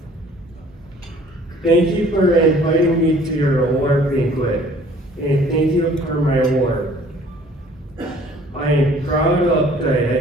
Thank you for inviting me to your award banquet, and thank you for my award. I am proud of the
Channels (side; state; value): both; normal; correlation 0.54